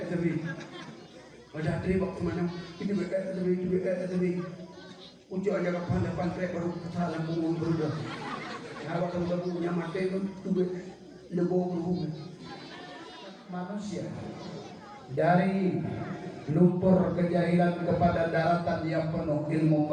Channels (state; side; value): identical; both; correlation 1.00